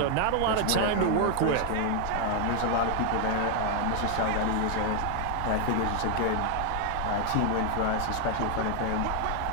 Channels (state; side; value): different; both; correlation 0.00